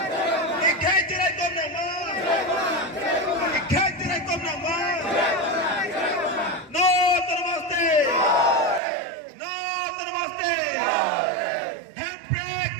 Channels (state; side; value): drops out; left; at 8.8 s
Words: Ikhai tirai kon na maँ. Ikhai tirai kon na maँ. No namaste. No namaste. Handbrake